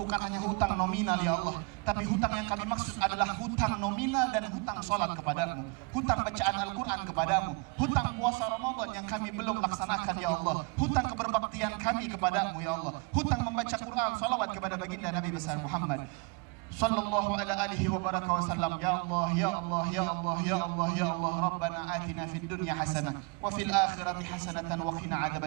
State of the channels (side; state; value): left; quieter; 31.4 dB